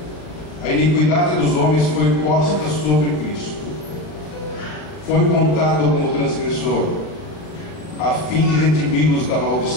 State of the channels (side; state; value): right; late; 40 ms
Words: a iniquidade dos homens foi posta sobre Cristo. Foi contado como transgressor, a fim de redimi-los da